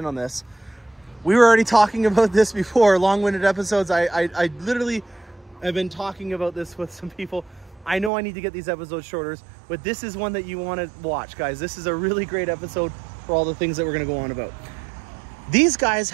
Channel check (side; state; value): left; drops out; at 8.1 s